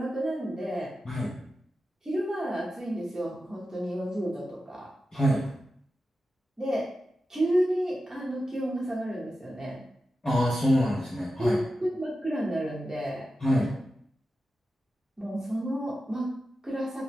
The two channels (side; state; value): both; normal; correlation 0.92